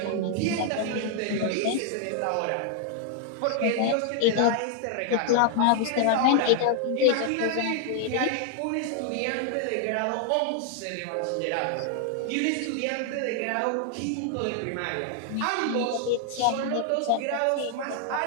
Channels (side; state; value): both; different; correlation 0.00